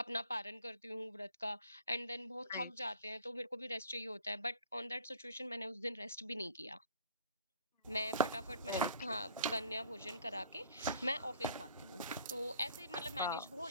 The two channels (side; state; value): both; inverted; correlation -0.53